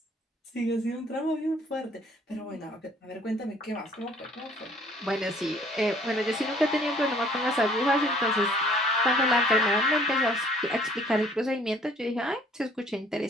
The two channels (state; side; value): normal; both; correlation 0.58